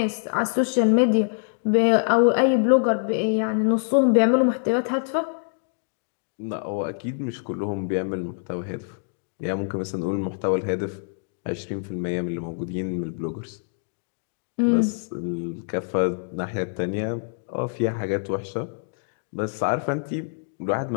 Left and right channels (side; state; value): right; silent; digital silence